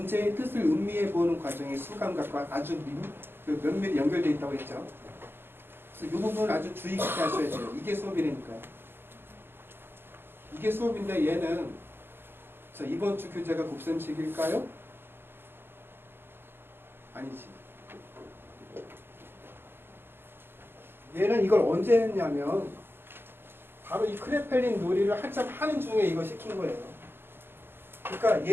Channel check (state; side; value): late; left; 0.10 ms